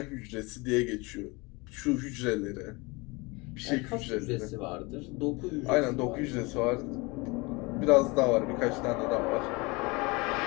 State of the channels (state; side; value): quieter; right; 25.9 dB